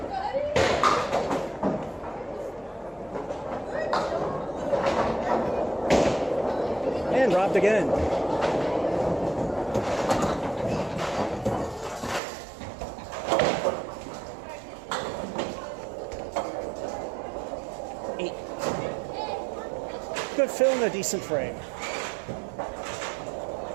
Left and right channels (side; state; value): left; drops out; at 12.2 s